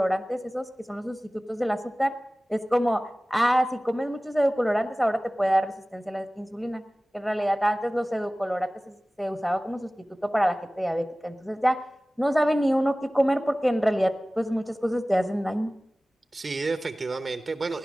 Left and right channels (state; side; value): normal; both; correlation 0.98